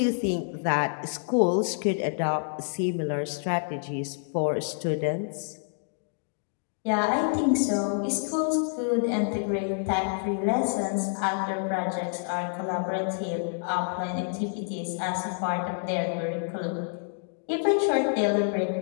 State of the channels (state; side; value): silent; right; digital silence